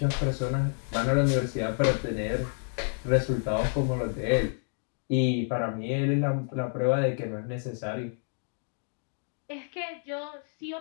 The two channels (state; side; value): silent; right; 58 dB below the other